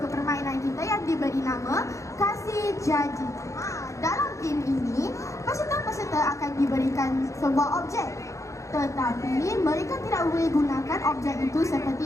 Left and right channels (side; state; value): right; late; 0.15 ms